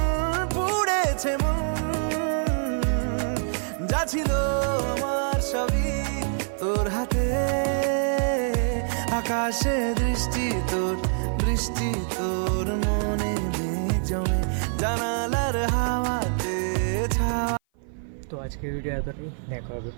পুড়েছে মন, যা ছিল আমার সবই তোর হাতে। আকাশে দৃষ্টি তোর, বৃষ্টি তোর মনে মেঘ জমে, জানালার হাওয়াতে ছাওয়া। তো আজকের ভিডিও এতটাই, দেখা হবে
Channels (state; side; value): silent; left; 56 dB below the other